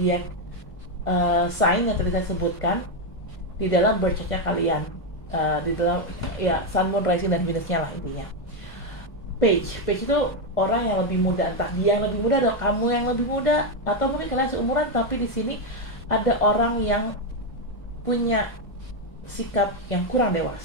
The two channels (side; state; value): right; late; 1.1 ms